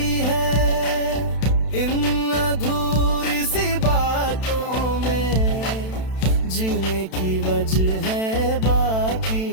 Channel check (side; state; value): right; late; 32 ms